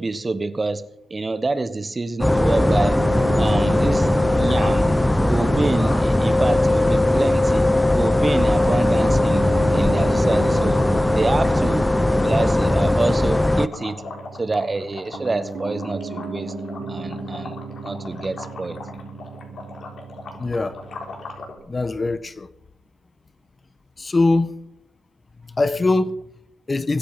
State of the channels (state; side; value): normal; both; correlation 0.96